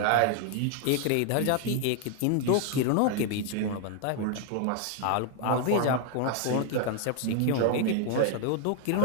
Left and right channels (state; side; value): different; both; correlation 0.00